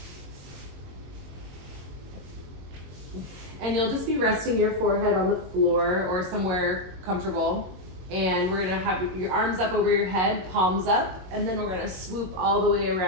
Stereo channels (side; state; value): left; late; 22 ms